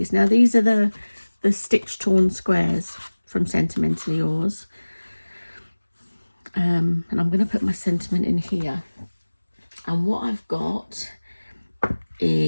Now these are the stitch torn squares from Sentimentally Yours, and I'm going to put my sentiment in here. And what I've got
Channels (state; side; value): inverted; both; correlation -1.00